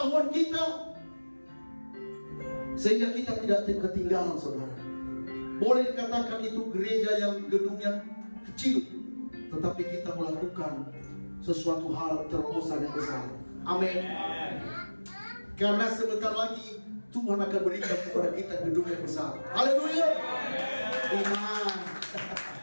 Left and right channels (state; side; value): inverted; both; correlation -1.00